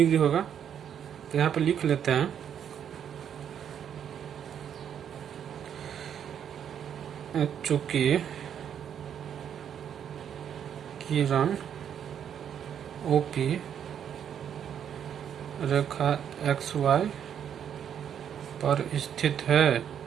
होगा। तो यहाँ पे लिख लेते हैं, चूंकि किरण OP रेखा XY पर स्थित है,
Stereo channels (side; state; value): left; quieter; 8.8 dB